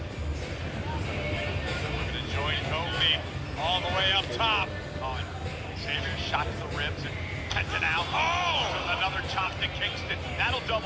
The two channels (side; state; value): both; identical; correlation 1.00